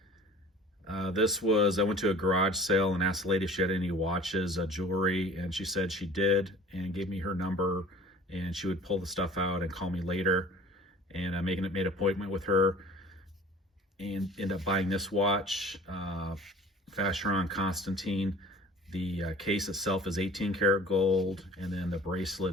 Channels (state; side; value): normal; both; correlation 0.47